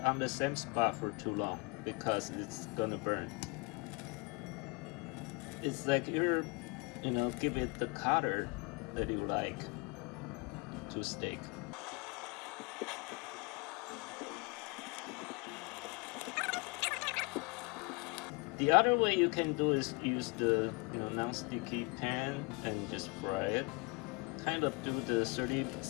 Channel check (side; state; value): right; quieter; 28.0 dB